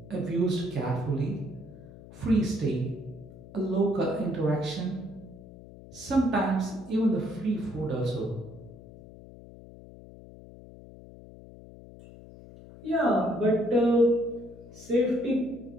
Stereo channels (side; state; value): left; noise; hum, 18 dB below the sound